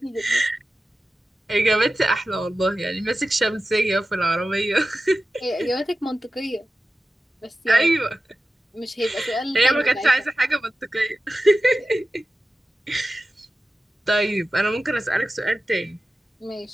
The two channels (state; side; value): normal; both; correlation 0.94